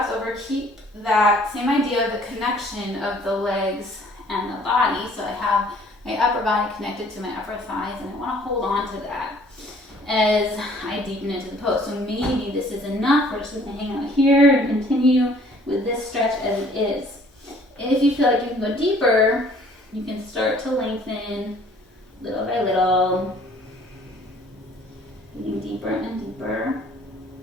over, keep that same idea of the connection of the legs and the body. So I have my upper body connected to my upper thighs, and I want to hold on to that as I deepen into the pose. So maybe this is enough. We're just going to hang out here and continue with this stretch as it is. If you feel like you can go deeper, you can start to lengthen little by little, getting deeper and deeper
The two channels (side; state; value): both; normal; correlation 0.57